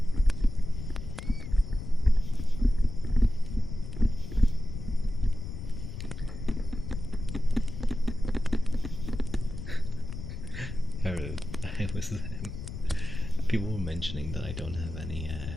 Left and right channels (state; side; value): noise; left; rumble, 8 dB below the sound